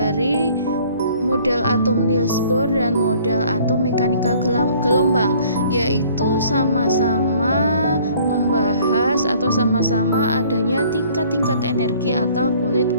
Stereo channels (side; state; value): both; inverted; correlation -0.56